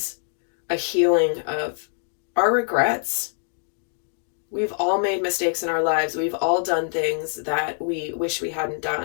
a healing of our regrets. We've all made mistakes in our lives. We've all done things that we wish we hadn't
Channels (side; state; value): right; silent; 62 dB below the other